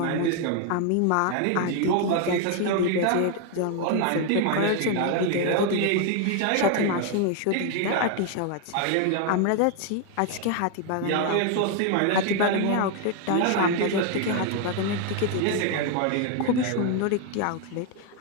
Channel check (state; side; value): different; both; correlation 0.01